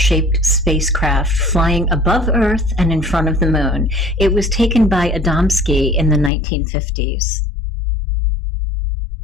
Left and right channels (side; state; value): right; drops out; at 6.3 s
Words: spacecraft flying above Earth and in front of the moon. It was taken by Adamski in the 1950s.